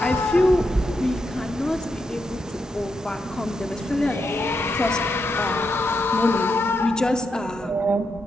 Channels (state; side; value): normal; both; correlation 0.83